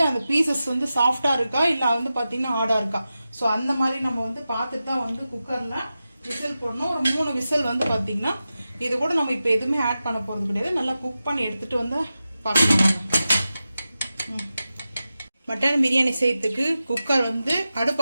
அந்த பீசஸ் வந்து சாஃப்டா இருக்கா இல்ல வந்து பாத்தீங்கன்னா ஹார்டா இருக்கா, ஸோ அந்த மாதிரி நம்ம வந்து பார்த்துட்டு தான் வந்து குக்கர்ல விசில் போடணும். ஒரு 3 விசில் வந்து பாத்தீங்கன்னா இது கூட நம்ம இப்போ எதுவுமே ஆட் பண்ண போறது கிடையாது. நல்லா குக் பண்ணி எடுத்துட்டு வந்து பார்க்கலாம். மட்டன் பிரியாணி செய்யறதுக்கு குக்கர் வந்து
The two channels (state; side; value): inverted; both; correlation -0.93